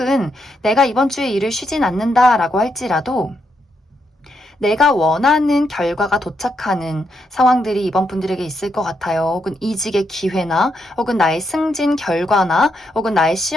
내가 이번 주에 일을 쉬진 않는다라고 할지라도 내가 원하는 결과가 도착하는 상황들이 이번 분들에게 있을 것 같아요. 혹은 이직의 기회나 혹은 나의 승진 결과나 혹은 나의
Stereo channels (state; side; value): normal; both; correlation 0.80